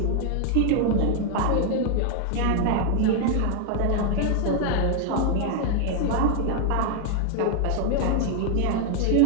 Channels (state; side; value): different; both; correlation 0.00